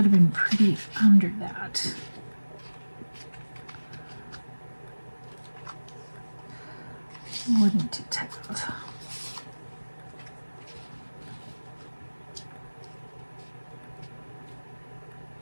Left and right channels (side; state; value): both; inverted; correlation -1.00